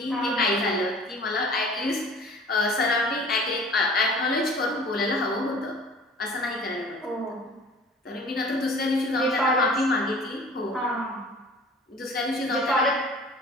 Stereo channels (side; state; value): both; normal; correlation 0.47